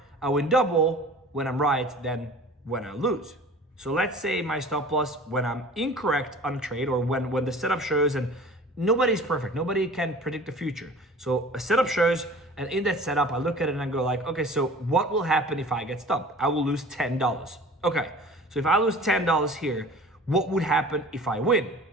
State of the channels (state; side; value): normal; both; correlation 0.43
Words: I win double when I'm right than when I lose. So let's say my stop loss when I'm incorrect on a trade, or when the setup shows, and nobody's perfect, nobody can predict the future. So a setup shows, and in that setup, I look at it and I go like, okay, so what will happen if I get stopped? I will lose $10. Okay, so if I lose $10 here, what would happen if I win?